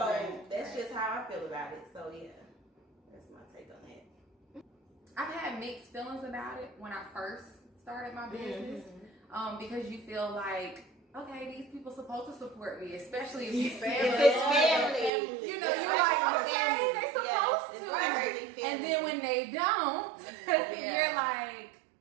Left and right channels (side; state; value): left; drops out; at 15.1 s